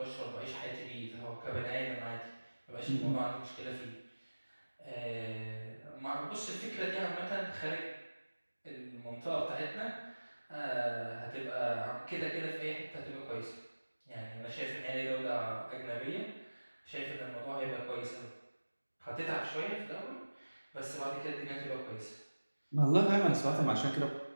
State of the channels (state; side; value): inverted; both; correlation -1.00